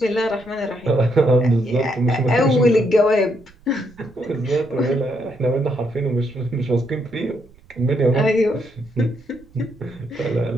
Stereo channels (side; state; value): right; noise; rumble, 27 dB below the sound